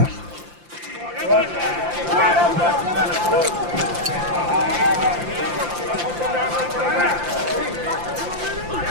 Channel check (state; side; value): late; left; 5.8 ms